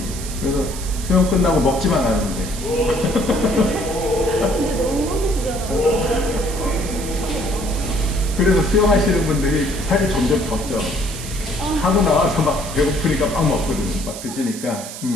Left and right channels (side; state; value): right; noise; hiss, 11 dB below the sound